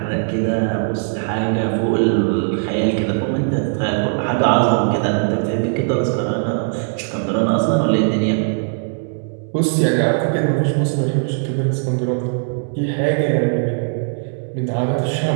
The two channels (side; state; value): left; silent; digital silence